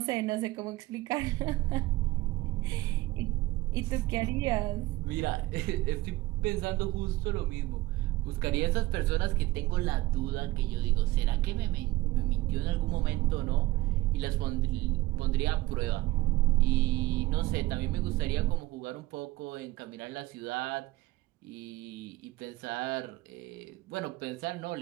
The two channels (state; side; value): quieter; left; 18.3 dB